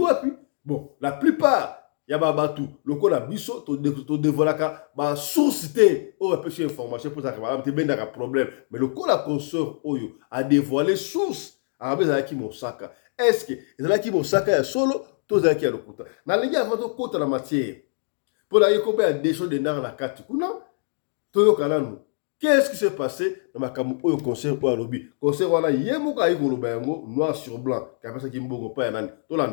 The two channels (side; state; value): right; silent; digital silence